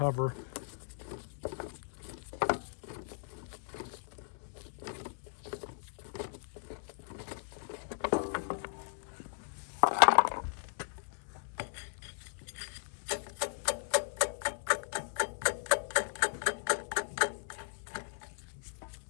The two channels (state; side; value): silent; right; 53 dB below the other